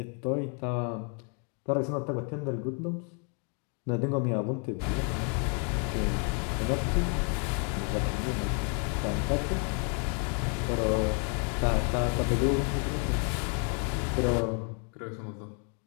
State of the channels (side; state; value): right; quieter; 39.4 dB